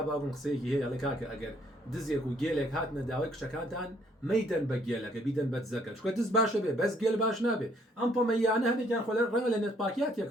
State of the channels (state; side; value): normal; both; correlation 0.66